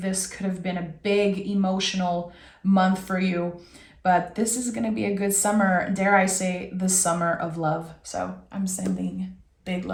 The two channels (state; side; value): identical; both; correlation 1.00